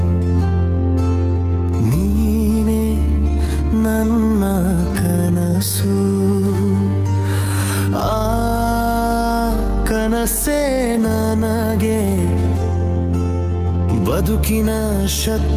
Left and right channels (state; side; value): identical; both; correlation 1.00